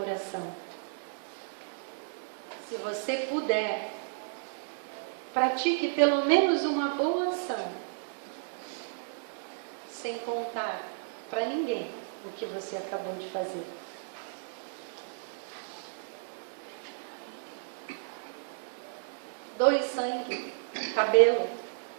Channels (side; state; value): left; silent; digital silence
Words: Se você puder, pratique pelo menos uma boa ação, sem contar para ninguém o que você acabou de fazer. Doe sangue, cabelo,